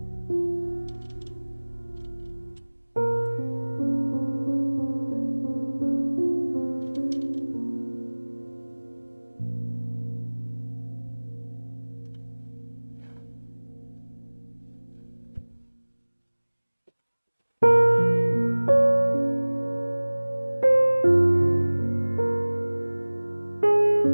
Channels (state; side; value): inverted; both; correlation -1.00